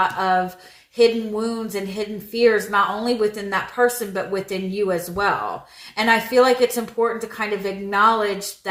of hidden wounds and hidden fears, not only within that person, but within you as well. And I feel like it's important to kind of acknowledge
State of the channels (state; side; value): identical; both; correlation 1.00